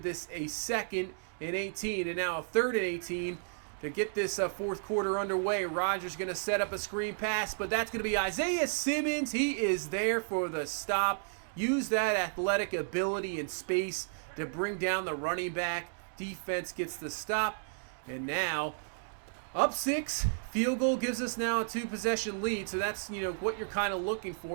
this a 2nd and 18, and now a 3rd and 18. To get this 4th quarter underway, Rodgers going to set up a screen pass, but that's going to be Isaiah Simmons. He is there for the stop. Use that athletic ability and space to bring down the running back. Defense gets the stop, and now up 6. Field goal gives us now a 2-possession lead, so that's, you know, what you're kind of looking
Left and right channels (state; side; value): silent; left; digital silence